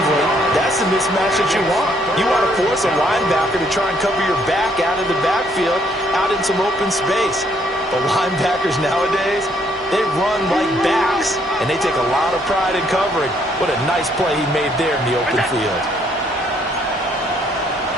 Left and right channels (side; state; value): both; normal; correlation 0.68